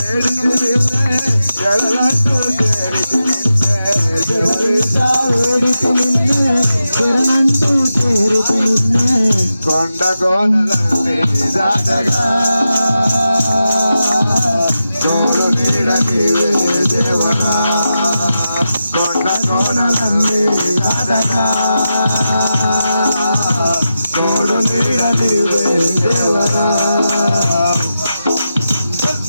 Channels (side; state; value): both; inverted; correlation -0.90